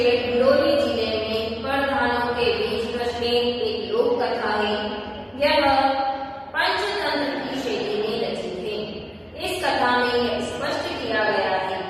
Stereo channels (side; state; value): both; identical; correlation 1.00